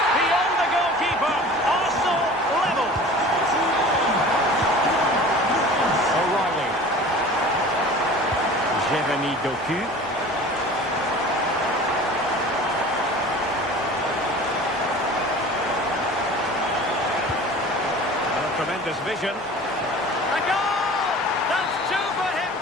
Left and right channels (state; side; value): normal; both; correlation 0.41